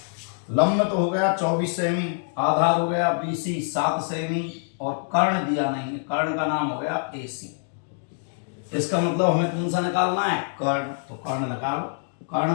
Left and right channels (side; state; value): right; silent; digital silence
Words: लंब तो हो गया 24 सेमी, आधार हो गया BC 7 सेमी, और कर्ण दिया नहीं है, कर्ण का नाम हो गया AC। इसका मतलब हमें कौन सा निकालना है कर्ण, तो कर्ण निकालो।